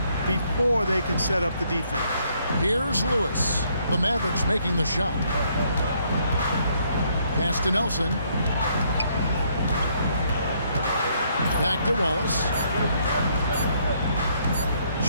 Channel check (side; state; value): both; inverted; correlation -0.70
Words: before they can set up the defense. Here's Lewis. The Mavericks making the shot. Pass to Nelson. Back to Wallace.